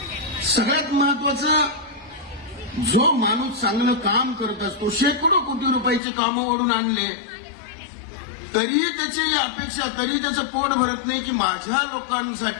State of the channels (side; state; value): right; drops out; at 6.0 s